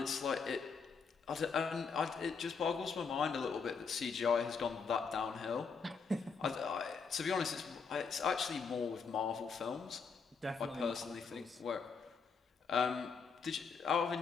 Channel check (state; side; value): quieter; right; 5.4 dB